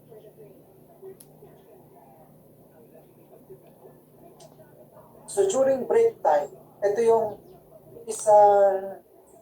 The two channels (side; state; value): both; identical; correlation 1.00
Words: So, during break time, ito yung isang